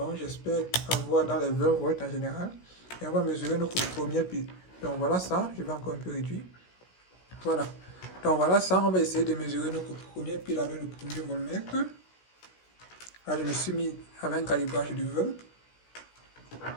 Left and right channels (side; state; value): right; late; 16 ms